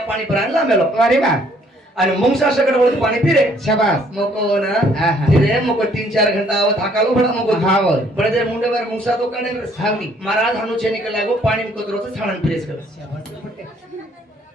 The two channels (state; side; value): normal; both; correlation 0.63